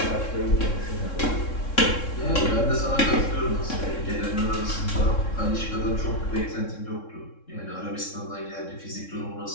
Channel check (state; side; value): late; right; 3.7 ms